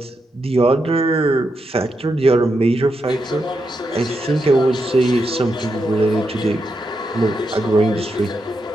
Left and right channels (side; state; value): both; normal; correlation 0.84